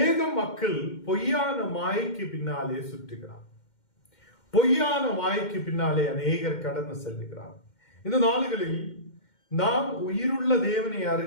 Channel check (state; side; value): late; right; 2.1 ms